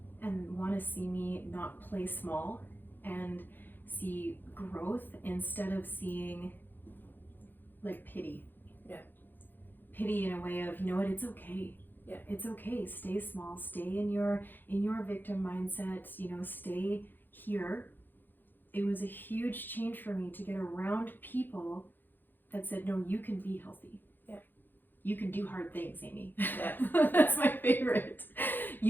and want to see me not play small and see growth instead of seeing like pity. Yeah. Pity in a way of, you know what, it's okay. Yeah. It's okay. Stay small. Stay in your victim mindset. You know, stay here. It was a huge change for me to get around people that said, no, you can be healthy. Yeah. You can do hard things, Amy. Yeah. That's my favorite.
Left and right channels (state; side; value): late; right; 0.092 ms